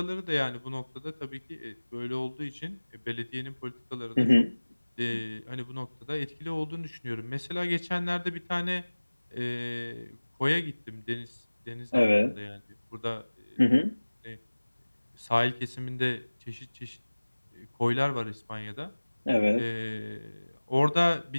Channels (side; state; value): both; inverted; correlation -1.00